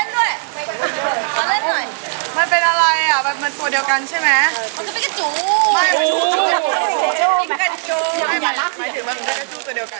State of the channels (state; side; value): silent; left; 67 dB below the other